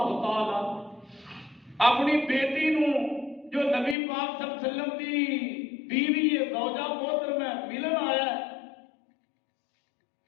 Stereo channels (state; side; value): drops out; right; at 4.0 s